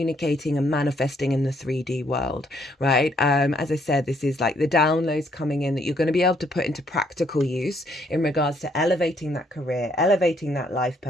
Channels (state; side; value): normal; both; correlation 0.69